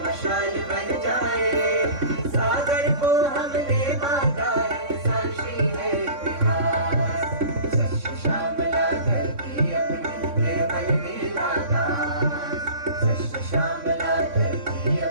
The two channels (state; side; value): late; left; 3.6 ms